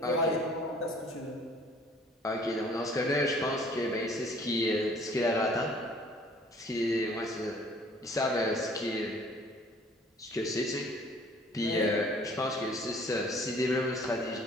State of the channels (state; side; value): normal; both; correlation 0.55